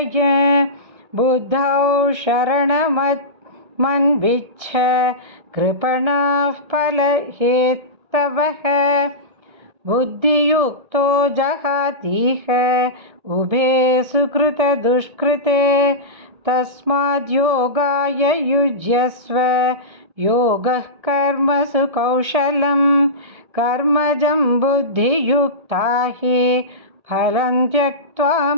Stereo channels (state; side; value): late; left; 1.6 ms